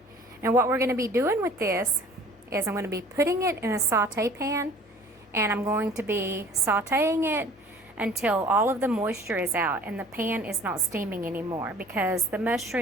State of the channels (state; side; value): normal; both; correlation 0.48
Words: and what we're going to be doing with this is I'm going to be putting it in a saute pan, and I'm going to be sauteing it until all of the moisture is out and the pan is not steaming anymore, because the